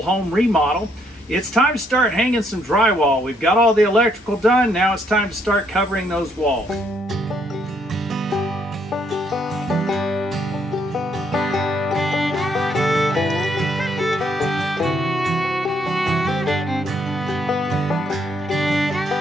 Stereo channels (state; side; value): normal; both; correlation 0.71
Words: home remodel. It's time to start hanging some drywall. We've got all the electrical done, now it's time to start covering those walls.